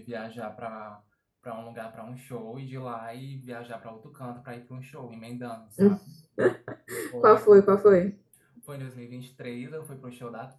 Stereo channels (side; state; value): both; identical; correlation 1.00